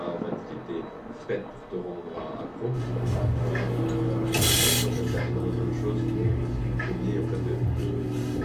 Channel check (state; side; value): identical; both; correlation 1.00